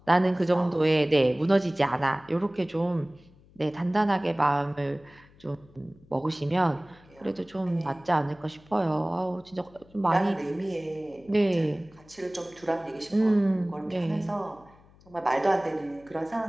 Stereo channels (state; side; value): noise; left; hum, 27 dB below the sound